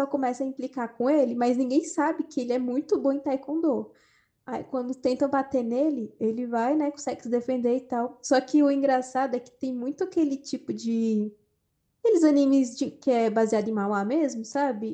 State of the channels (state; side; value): identical; both; correlation 1.00